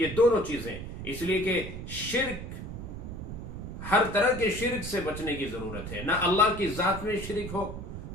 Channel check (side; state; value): right; noise; rumble, 8 dB below the sound